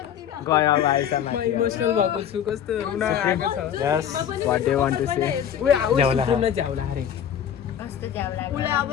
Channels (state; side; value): quieter; right; 9.3 dB